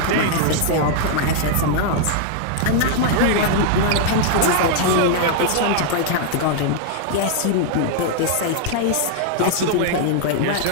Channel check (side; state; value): both; different; correlation 0.00